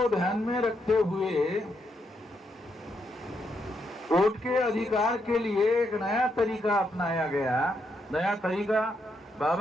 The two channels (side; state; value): both; normal; correlation 0.79